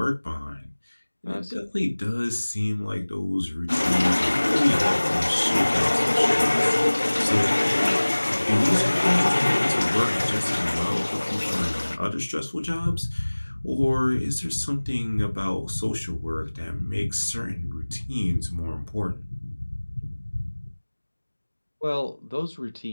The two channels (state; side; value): inverted; both; correlation -1.00